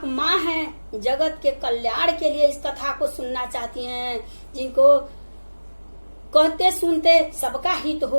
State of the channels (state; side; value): inverted; both; correlation -1.00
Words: माँ हैं, जगत के कल्याण के लिए इस कथा को सुनना चाहती हैं। जिनको कहते सुनते सबका हित